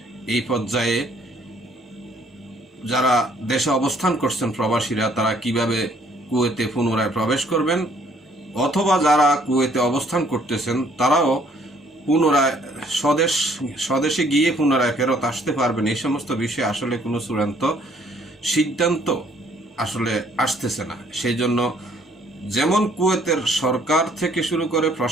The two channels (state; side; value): normal; both; correlation 0.62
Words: এই পর্যায়ে যারা দেশে অবস্থান করছেন প্রবাসীরা, তারা কিভাবে কুয়েতে পুনরায় প্রবেশ করবেন, অথবা যারা কুয়েতে অবস্থান করতেছেন তারাও পুনরায় স্বদেশে গিয়ে পুনরায় ফেরত আসতে পারবেন, এই সমস্ত বিষয়ে আসলে কোনো চূড়ান্ত সিদ্ধান্ত আসলে আসতেছে না। সেই জন্য যেমন কুয়েতের সরকার থেকে শুরু করে